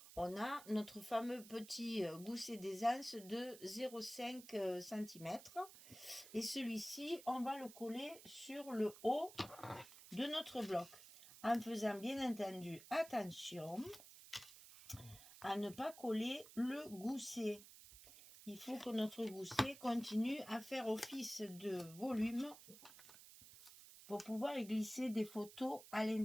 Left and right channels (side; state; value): right; noise; hiss, 17 dB below the sound